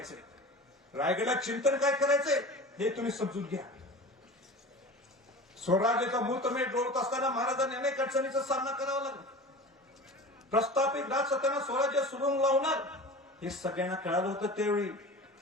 रायगडला चिंतन काय करायचंय हे तुम्ही समजून घ्या. स्वराज्याचा मुहूर्तमेढ डोळत असताना महाराजांनी अनेक अडचणीचा सामना करावा लागला. प्रस्थापित राजसत्ताना स्वराज्य सुरुंग लावणार हे सगळ्यांना कळालं होतं.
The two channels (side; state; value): both; normal; correlation 0.35